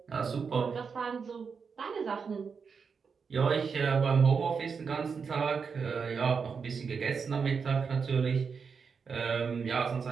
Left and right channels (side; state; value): left; quieter; 5.7 dB